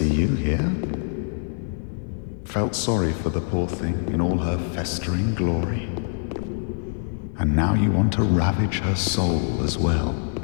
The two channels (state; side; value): silent; right; digital silence